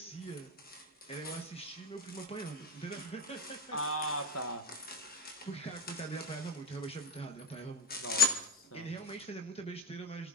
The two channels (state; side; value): normal; both; correlation 0.15